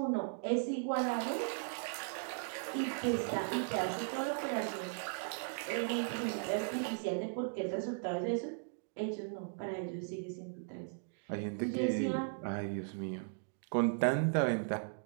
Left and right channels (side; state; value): left; silent; digital silence